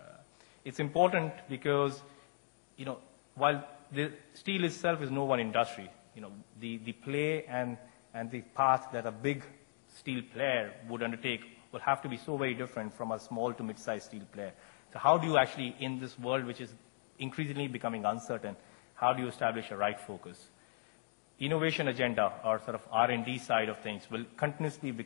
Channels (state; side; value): silent; right; digital silence